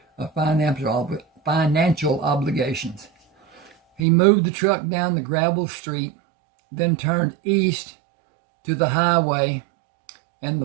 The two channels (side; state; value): left; drops out; at 4.0 s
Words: of financial obligations. He moved the truck down the gravel street, then turned east to the highway and